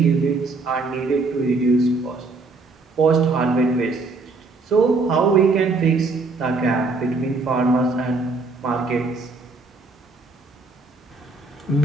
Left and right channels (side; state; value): left; quieter; 3.8 dB